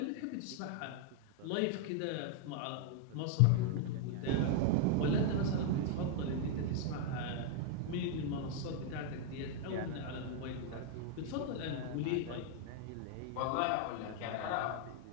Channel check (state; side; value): different; both; correlation 0.00